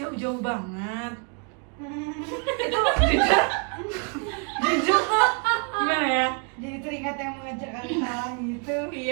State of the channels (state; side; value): quieter; left; 37.6 dB